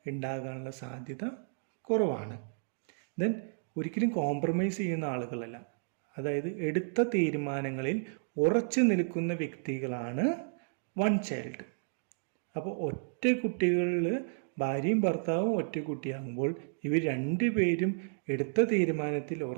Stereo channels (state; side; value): silent; left; digital silence